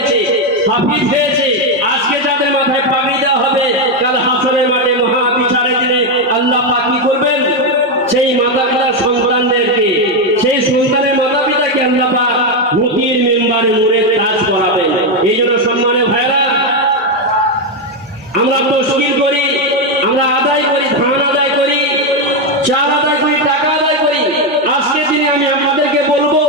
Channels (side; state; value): both; normal; correlation 0.06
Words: হাফিজ হয়েছে, আজকে যাদের মাথায় পাগড়ি দেওয়া হবে, কাল হাসরের মাঠে মহা বিচারের দিনে আল্লাহ পাক কি করবেন? সেই মাতা পিতার সন্তানদেরকে, সেই সন্তানের মাতা পিতাকে আল্লাহ পাক মুক্তির মেম্বারে নূরের তাজ করাবেন। এই জন্য সম্মানের ভাইরা, আমরা তশকিল করি, আমরা আদায় করি, ধান আদায় করি, চাল আদায় করি, টাকা আদায় করি। আজকে দিনে আমি আপনাদেরকে বলবো,